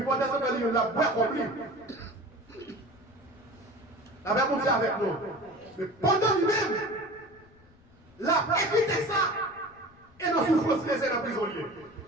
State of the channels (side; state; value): left; noise; rumble, 27 dB below the sound